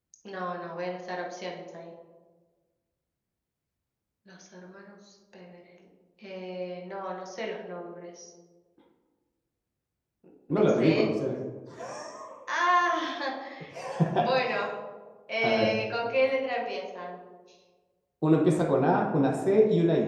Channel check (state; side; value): identical; both; correlation 1.00